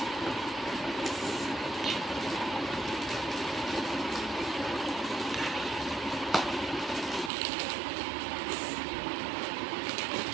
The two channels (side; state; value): left; drops out; at 7.3 s